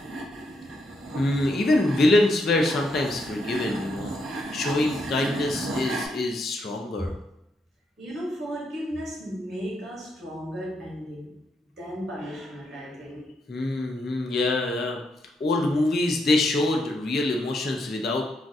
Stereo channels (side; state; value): both; normal; correlation 0.79